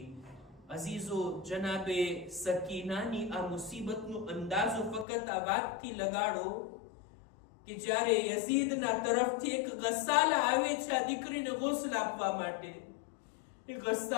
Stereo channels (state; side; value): drops out; right; at 5.1 s